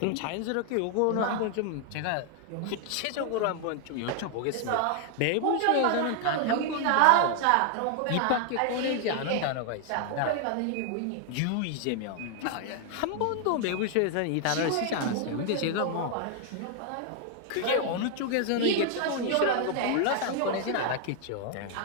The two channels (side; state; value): both; different; correlation 0.00